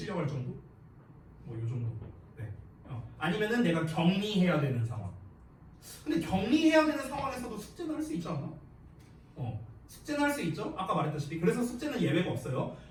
정도? 뭐 요 정도. 네. 아니면은 내가 격리해야 되는 상황. 근데 격리해야 되는 상황에서도 숙제는 할 수 있지 않나? 숙제는 할 수 있죠? 아까 말했다시피. 그래서 숙제는 예외가 없어요.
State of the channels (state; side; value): identical; both; correlation 1.00